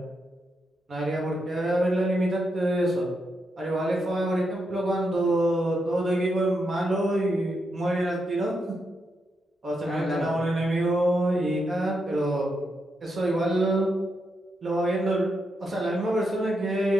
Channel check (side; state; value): both; normal; correlation 0.83